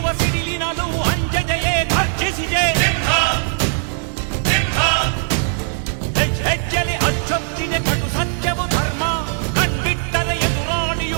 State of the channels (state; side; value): silent; left; 55 dB below the other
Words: ಸಿಡಿಲಿನಲ್ಲೂ ಅಂಜದೆಯೇ ಗರ್ಜಿಸಿದೆ. ಹೆಜ್ಜೆಲೆ ಅಚ್ಚೊತ್ತಿದೆ ಕಟು ಸತ್ಯವು ಧರ್ಮ, ಕಣ್ಬಿಟ್ಟರೆ